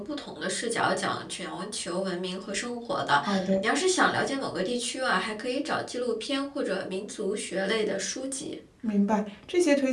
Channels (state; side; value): identical; both; correlation 1.00